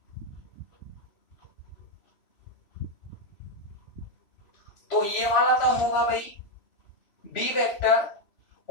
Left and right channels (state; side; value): late; right; 3.0 ms